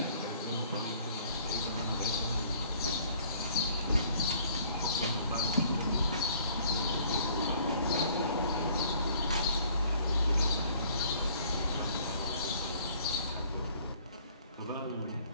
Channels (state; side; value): inverted; both; correlation -0.58